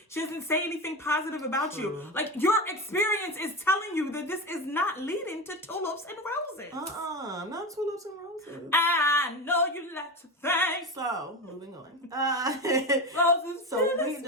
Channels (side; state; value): both; normal; correlation 0.22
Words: She doesn't say anything positive about you. Like, your experience is telling you that this is not leading to tulips and roses. Not tulips and roses. I know you like to think. So, moving on. Roses. So, we